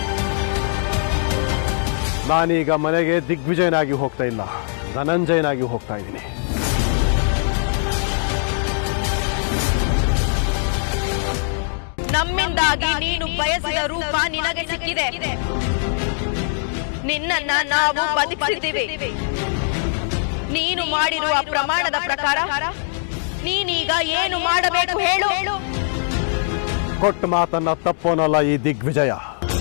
ನಾನೀಗ ಮನೆಗೆ ದಿಗ್ವಿಜಯನಾಗಿ ಹೋಗ್ತಾ ಇಲ್ಲ, ಧನಂಜಯನಾಗಿ ಹೋಗ್ತಾ ಇದ್ದೀನಿ. ನಮ್ಮಿಂದಾಗಿ ನೀನು ಬಯಸಿದ ರೂಪ ನಿನಗೆ ಸಿಕ್ಕಿದೆ. ನಿನ್ನನ್ನ ನಾವು ಬದುಕಿಸಿದ್ದೀವಿ. ನೀನು ಮಾಡಿರುವ ಪ್ರಮಾಣದ ಪ್ರಕಾರ ನೀನೀಗ ಏನು ಮಾಡಬೇಕು ಹೇಳು. ಕೊಟ್ಟ ಮಾತನ್ನ ತಪ್ಪೋನಲ್ಲ ಈ ದಿಗ್ವಿಜಯ.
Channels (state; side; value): silent; right; digital silence